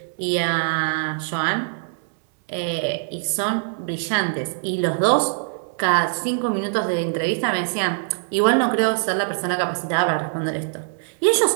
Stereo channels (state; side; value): silent; left; digital silence